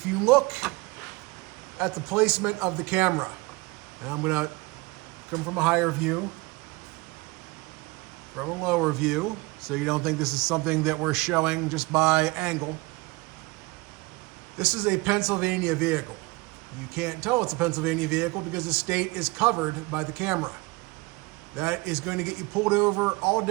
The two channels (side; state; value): left; quieter; 24.1 dB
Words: you look at the placement of the camera, and I'm gonna come from a higher view, from a lower view, so you don't think this is something that we're showing just by angle. This is a Pennsylvania vehicle. You can't tell it's a Pennsylvania vehicle because the state is covered by the camera. That is going to get you pulled over all